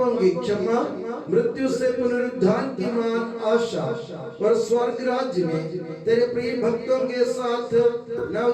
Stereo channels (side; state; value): both; identical; correlation 1.00